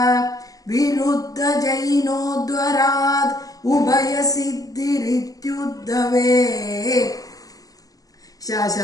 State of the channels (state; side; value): late; right; 0.17 ms